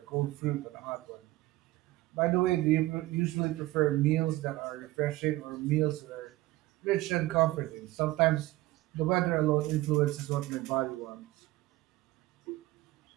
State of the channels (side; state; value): left; quieter; 18.1 dB